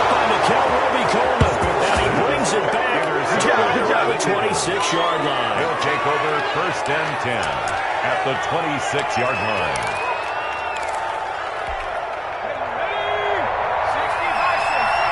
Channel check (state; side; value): identical; both; correlation 1.00